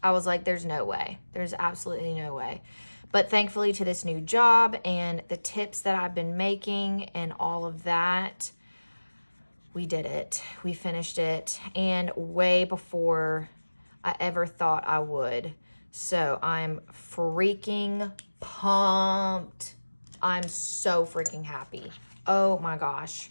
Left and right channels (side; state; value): both; inverted; correlation -1.00